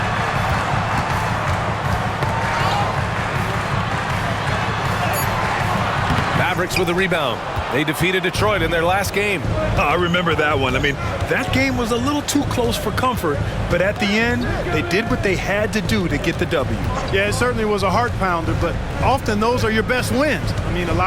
Mavericks with a rebound. They defeated Detroit in their last game. I remember that one. I mean, that game was a little too close for comfort, but at the end, they did what they had to do to get the W. Yeah, it certainly was a heart pounder, but often those are your best wins. I mean, a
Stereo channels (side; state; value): both; identical; correlation 1.00